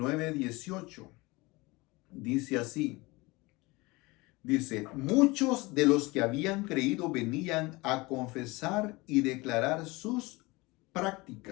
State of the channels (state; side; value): quieter; right; 23.2 dB